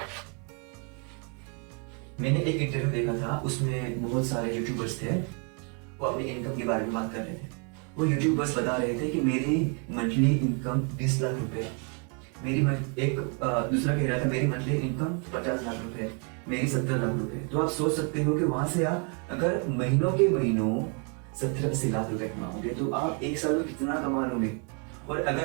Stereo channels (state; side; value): quieter; left; 38.1 dB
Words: मैंने एक इंटरव्यू देखा था, उसमें बहुत सारे यूट्यूबर्स थे, वो अपनी इनकम के बारे में बात कर रहे थे। वो यूट्यूबर्स बता रहे थे कि मेरी मंथली इनकम 20 लाख रुपए, दूसरा कह रहा था मेरी मंथली इनकम 50 लाख रुपए, मेरी 70 लाख रुपए। तो आप सोच सकते हो कि वहां से आप अगर महीनों के महीनों 70-80 लाख रुपए कमाओगे तो आप 1 साल में कितना कमा लोगे। और